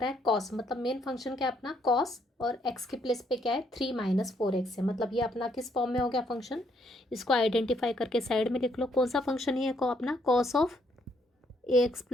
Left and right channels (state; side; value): normal; both; correlation 0.71